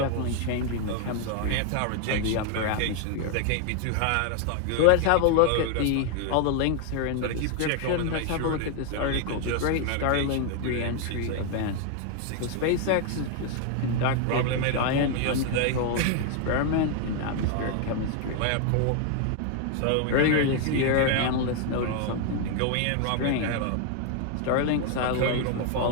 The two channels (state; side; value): different; both; correlation 0.00